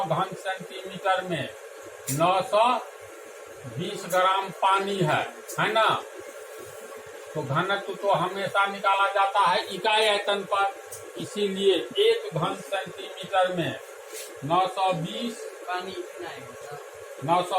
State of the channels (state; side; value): identical; both; correlation 1.00